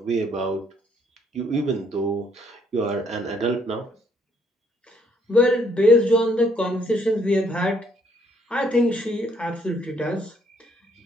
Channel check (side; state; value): both; normal; correlation 0.67